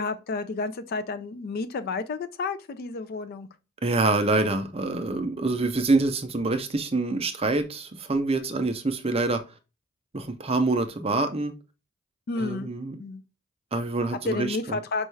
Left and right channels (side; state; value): both; normal; correlation 0.43